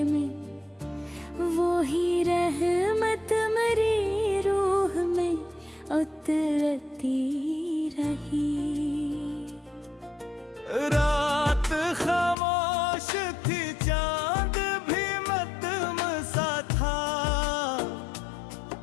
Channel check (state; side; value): drops out; right; at 12.4 s